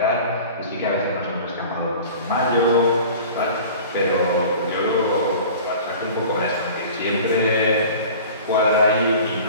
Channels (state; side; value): inverted; both; correlation -0.41